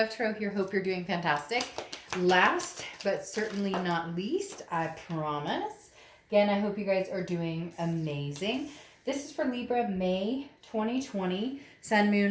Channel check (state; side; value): identical; both; correlation 1.00